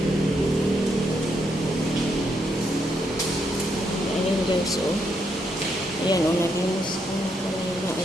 Ayan guys, oh. Ayan, oh, naglinis ko na.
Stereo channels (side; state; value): both; normal; correlation 0.78